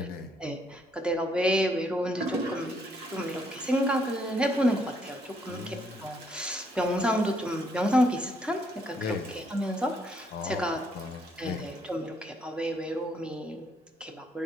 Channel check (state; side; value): normal; both; correlation 0.71